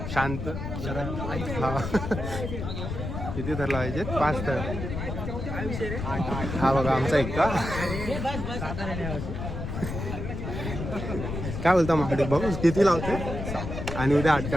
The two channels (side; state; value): left; noise; rumble, 5 dB below the sound